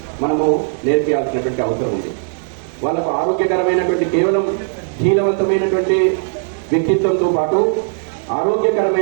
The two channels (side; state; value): left; silent; digital silence